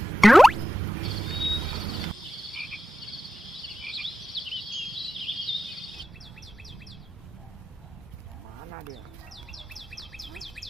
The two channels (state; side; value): normal; both; correlation 0.92